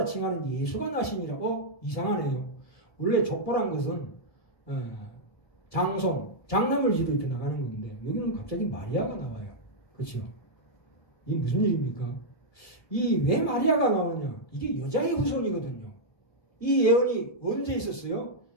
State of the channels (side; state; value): right; late; 1.7 ms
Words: 칭하는 예수가 나시니라. 이상하네요. 원래 족보란 것은 장손, 장남을지로 이렇게 나가는 건데 여기는 갑자기 마리아가 나와요. 그렇죠? 이게 무슨 일입니까? 왜 마리아가 나오느냐? 이게 여자의 후손이거든요. 이 예언이 언제 있었어요?